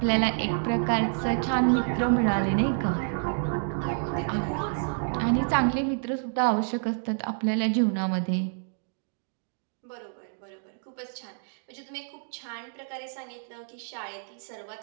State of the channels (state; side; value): silent; left; digital silence